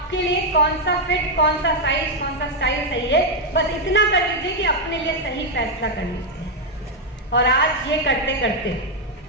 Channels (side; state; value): both; normal; correlation 0.01